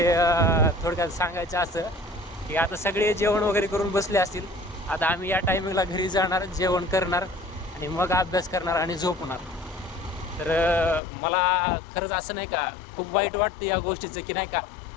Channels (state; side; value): drops out; right; at 11.0 s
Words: थोडक्यात सांगायचं असं की आता सगळे जेवण वगैरे करून बसले असतील. आता आम्ही या टायमिंगला घरी जाणार, जेवण करणार आणि मग अभ्यास करणार आणि झोपणार. तर मला खरंच असं नाही का खूप वाईट वाटतं या गोष्टीचं की नाही का